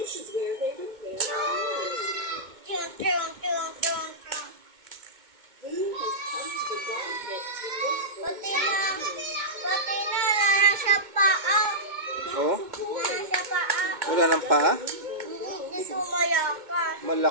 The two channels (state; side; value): late; left; 2.2 ms